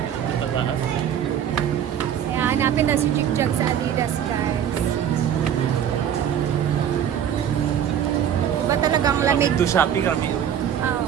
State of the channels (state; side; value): quieter; left; 9.4 dB